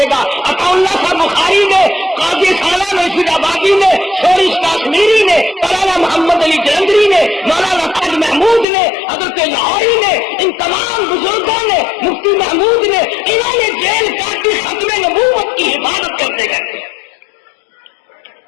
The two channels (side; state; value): right; drops out; at 8.7 s